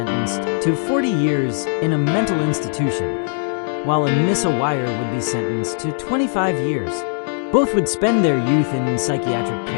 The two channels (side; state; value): right; silent; digital silence